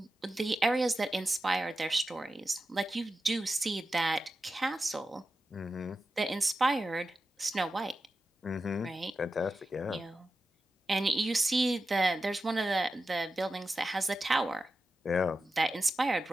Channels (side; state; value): both; normal; correlation 0.92